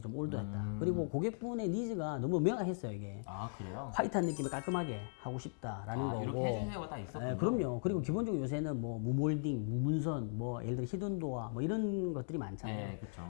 올드했다. 그리고 고객분의 니즈가 너무 명확했어요. 이게 아, 그래요? 화이트한 느낌을 깔끔하게 하고 싶다라는 거고. 이렇게 해주세요가 딱 있었군요. 그럼요. 그리고 기본적으로 요새는 뭐 무몰딩, 무문선, 뭐 예를 들어 히든도어 뭐 이런 것들이 많잖아요. 네,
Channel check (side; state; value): right; silent; digital silence